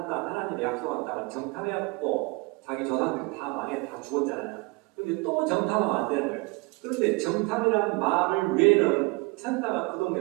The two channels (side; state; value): left; quieter; 26.6 dB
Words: 땅, 하나님의 약속한 땅을 정탐해갖고 자기 조상들이 다 망해 다 죽었잖아요. 근데 또 정탐하면 안 되는 거예요. 그런데 정탐이라는 말을 외에는 천사가 그